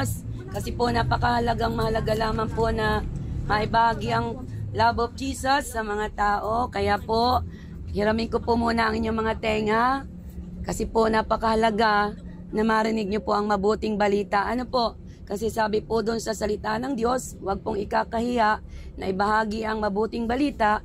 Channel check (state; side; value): identical; both; correlation 1.00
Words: Kasi po napakahalagang mahalaga lamang po na maibahagi ang love of Jesus sa mga tao. Kaya po, hiramin ko po muna ang inyong mga tenga. Kasi po napakahalaga na marinig nyo po ang mabuting balita. Ano po? Kasi sabi po doon sa salita ng Diyos, huwag pong ikakahiya na ibahagi ang mabuting balita